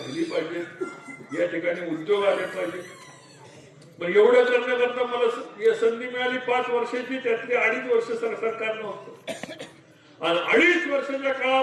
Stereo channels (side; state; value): both; identical; correlation 1.00